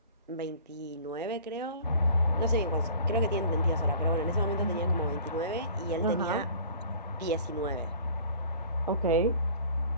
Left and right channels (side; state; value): both; inverted; correlation -0.47